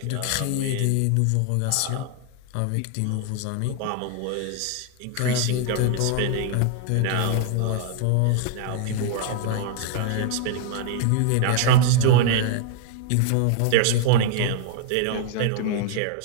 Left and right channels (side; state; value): both; different; correlation 0.00